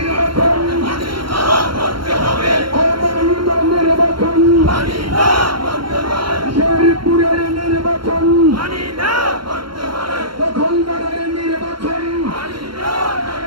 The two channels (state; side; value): late; left; 0.73 ms